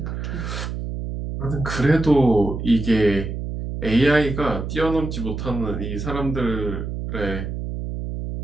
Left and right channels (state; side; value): noise; right; hum, 5 dB below the sound